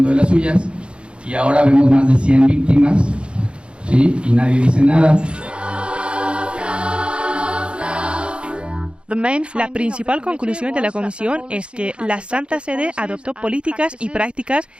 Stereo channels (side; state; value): left; late; 0.057 ms